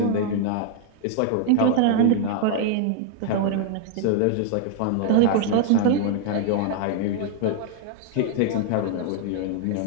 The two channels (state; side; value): different; both; correlation 0.00